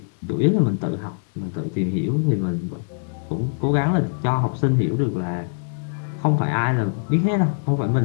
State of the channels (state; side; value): silent; right; digital silence